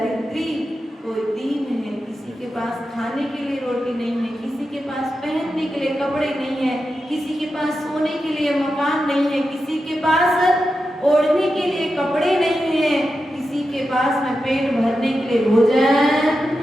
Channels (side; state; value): both; normal; correlation 0.90